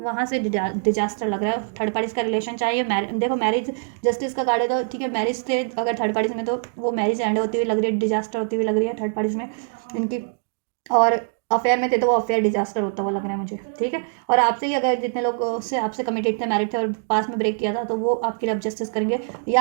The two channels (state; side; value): silent; left; digital silence